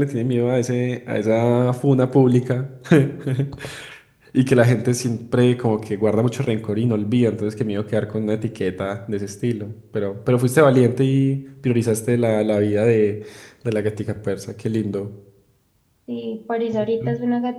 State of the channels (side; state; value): both; identical; correlation 1.00